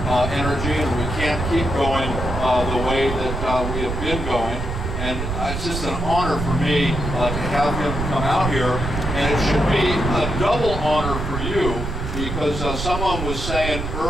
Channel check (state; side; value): noise; right; rumble, 4 dB below the sound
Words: energy, and we can't keep going the way that we have been going. And it's just an honor for me to have him come out here, and it should be a double honor for you, because someone was saying